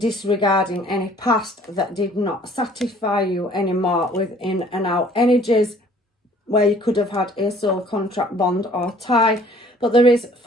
any past that did not satisfy you anymore with in and out energies where you could have had a soul contract, bond or tie. But there is,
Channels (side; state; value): both; normal; correlation 0.55